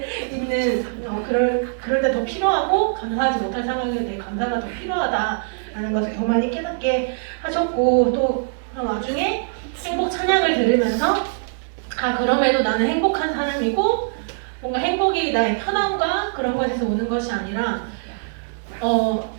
그럴 때 더 필요하고 감사하지 못할 상황에 대해 감사가 더 필요하다라는 것을 더 많이 깨닫게 하셨고 또 나중에 행복 찬양을 들으면서 그럼에도 나는 행복한 사람이고 뭔가 행복이 나의 편함과 그런 것에서 오는 것이 아니라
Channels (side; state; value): left; silent; 64 dB below the other